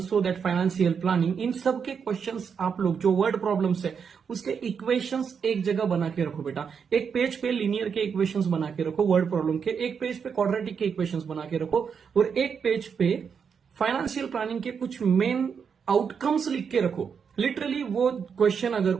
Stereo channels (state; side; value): quieter; left; 6.6 dB